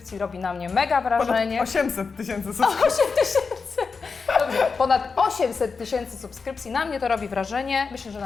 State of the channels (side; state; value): right; quieter; 4.9 dB